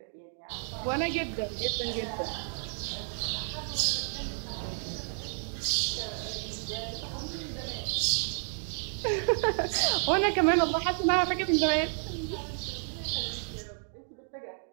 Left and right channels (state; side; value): silent; left; 57 dB below the other